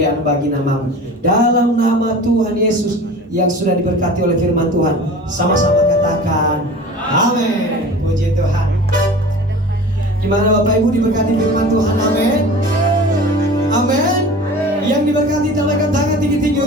bagi nama-Mu. Dalam nama Tuhan Yesus yang sudah diberkati oleh firman Tuhan, sama-sama katakan amin. Puji Tuhan. Gimana Bapak Ibu diberkati firman Tuhan? Amin. Amin. Yang diberkati tampilkan tangan tinggi-tinggi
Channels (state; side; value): normal; both; correlation 0.38